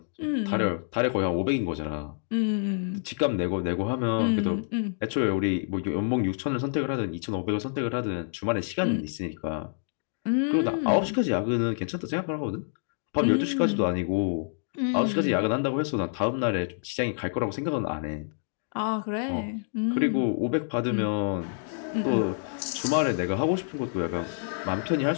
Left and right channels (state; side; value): silent; right; digital silence